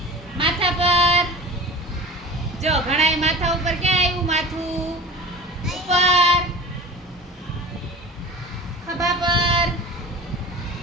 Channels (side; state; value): both; normal; correlation 0.37